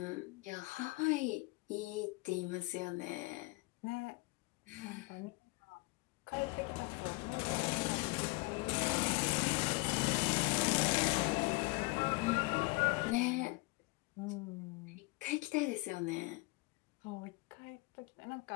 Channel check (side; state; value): right; quieter; 26.2 dB